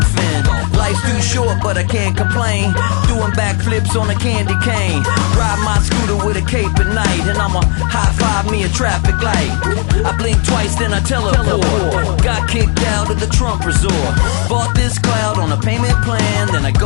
fin. Life's too short but I can't complain, doing backflips on a candy cane. Ride my scooter with a cape at night, and I'ma high five me a traffic light. I blink twice then I teleport, got kicked out of the Trump resort. Bought this cloud on a payment plan, then I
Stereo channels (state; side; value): quieter; right; 37.5 dB